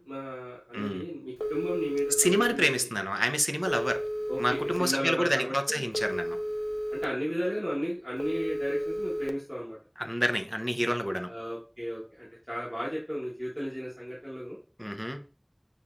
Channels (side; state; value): both; identical; correlation 1.00